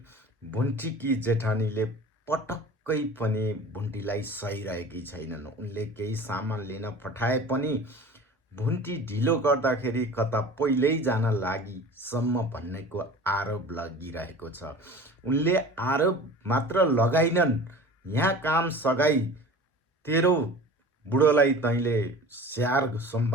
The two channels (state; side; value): normal; both; correlation 0.40